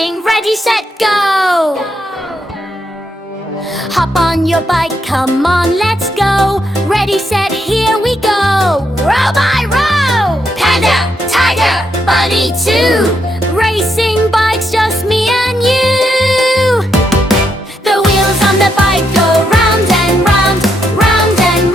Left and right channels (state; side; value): normal; both; correlation 0.79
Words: ready, set, go! Hop on your bike, come on, let's go! Ready, set, here we go! Row by row! Panda, tiger, bunny too! Racing bikes, just me and you! The wheels on the bike go round and round, round and